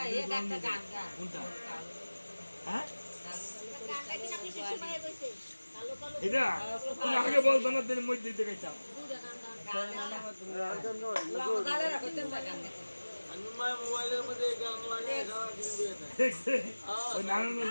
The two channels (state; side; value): inverted; both; correlation -1.00